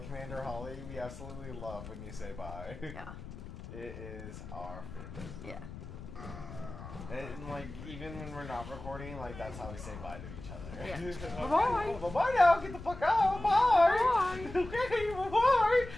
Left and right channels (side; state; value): left; noise; rumble, 12 dB below the sound